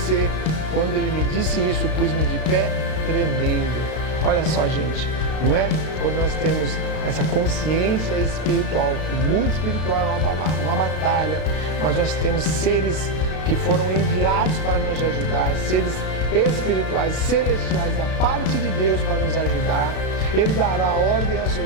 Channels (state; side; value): late; right; 32 ms